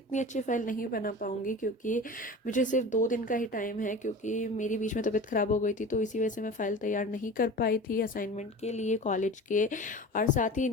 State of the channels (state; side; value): normal; both; correlation 0.35